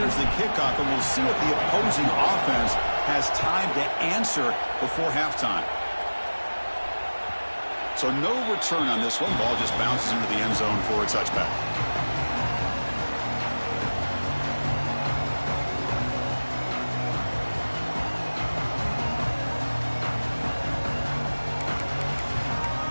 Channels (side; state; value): both; inverted; correlation -1.00